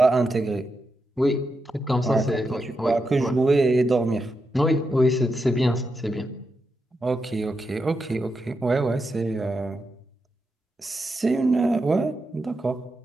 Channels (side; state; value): both; normal; correlation 0.86